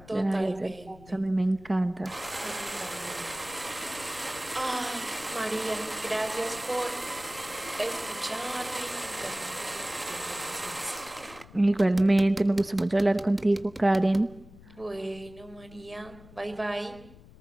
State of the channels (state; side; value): noise; left; rumble, 21 dB below the sound